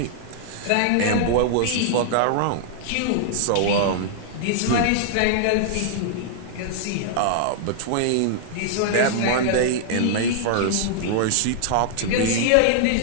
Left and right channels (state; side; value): different; both; correlation -0.01